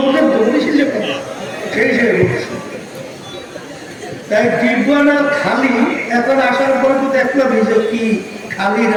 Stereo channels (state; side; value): identical; both; correlation 1.00